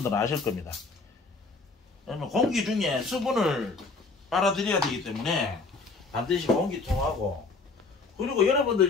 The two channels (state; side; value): quieter; right; 4.0 dB